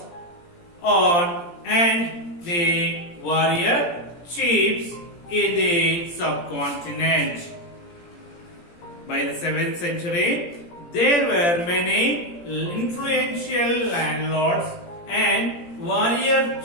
and the warrior chiefs in the subcontinent. By the 7th century, there were many influential landlords and warrior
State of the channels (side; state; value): right; late; 17 ms